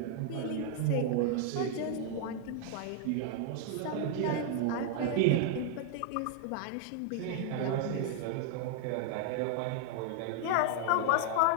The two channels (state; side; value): different; both; correlation 0.00